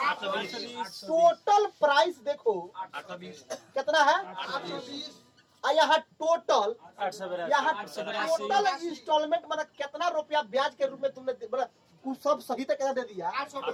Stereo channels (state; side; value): identical; both; correlation 1.00